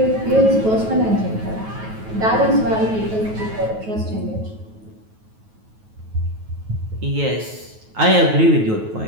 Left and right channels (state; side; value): late; left; 9.3 ms